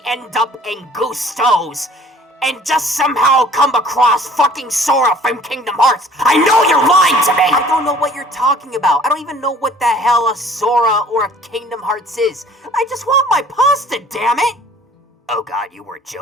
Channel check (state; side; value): normal; both; correlation 0.52